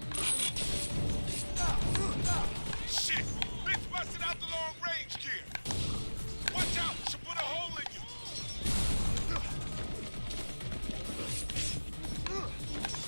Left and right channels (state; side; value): inverted; both; correlation -1.00